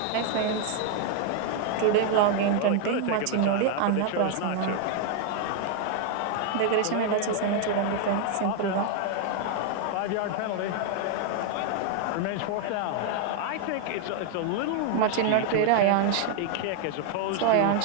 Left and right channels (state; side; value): different; both; correlation 0.00